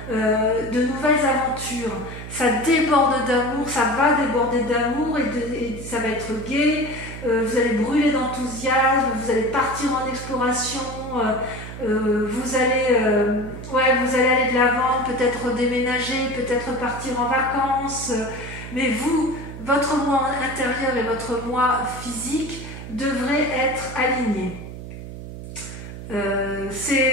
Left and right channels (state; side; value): noise; right; hum, 11 dB below the sound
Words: de nouvelles aventures. Ça déborde d'amour, ça va déborder d'amour et ça va être gai, vous allez brûler d'enthousiasme, vous allez partir en exploration, vous allez aller de l'avant, peut-être déménager, peut-être partir en vacances, mais votre moi intérieur et votre moi physique devraient être alignés.